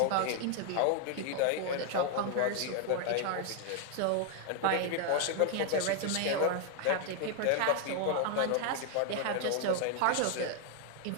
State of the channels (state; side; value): different; both; correlation 0.01